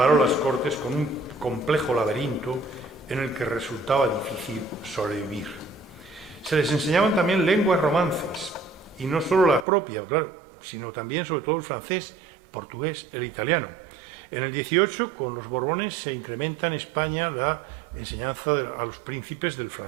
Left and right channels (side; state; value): left; drops out; at 9.7 s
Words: las cortes con un complejo laberinto en el que resultaba difícil sobrevivir. Se les enseñaban también lenguas romances, y no solo la propia, claro, sino también, sobre todo, el francés, portugués, el italiano. En el 18, con los Borbones, se incrementa en España la enseñanza a los príncipes del